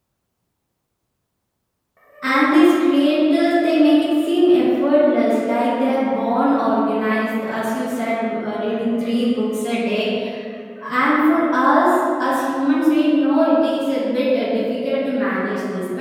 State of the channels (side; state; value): both; identical; correlation 1.00